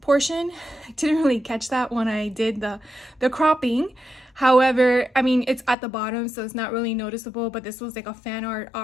I didn't really catch that when I did the cropping. However, I mean, it's at the bottom, so it's not really noticeable, but this was like a fan art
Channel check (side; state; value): right; drops out; at 5.8 s